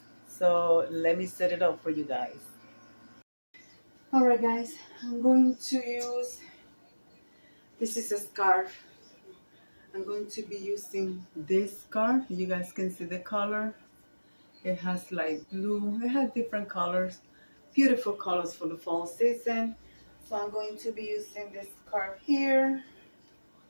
So let me set it up for you guys. All right, guys, I'm going to use, this is a scarf. I'm going to be using this scarf. You guys can see the color. It has like blue. It has different colors. Beautiful colors for the fall season. So I'm going to be using this scarf here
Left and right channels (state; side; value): inverted; both; correlation -1.00